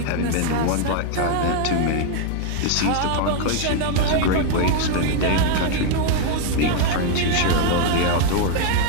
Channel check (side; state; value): both; different; correlation 0.00